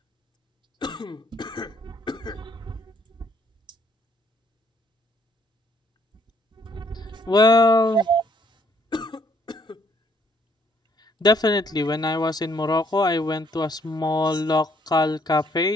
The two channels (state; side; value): normal; both; correlation 0.67